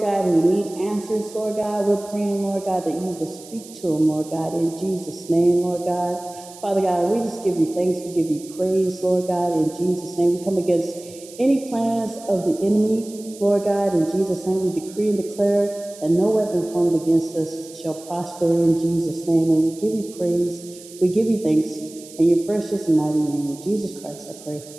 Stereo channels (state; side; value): noise; right; hiss, 19 dB below the sound